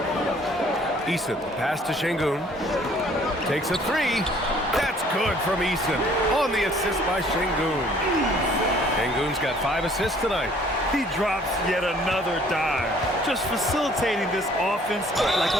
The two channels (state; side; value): normal; both; correlation 0.57